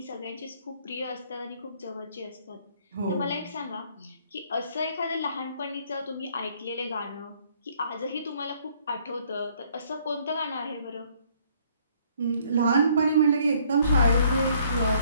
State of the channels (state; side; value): inverted; both; correlation -0.63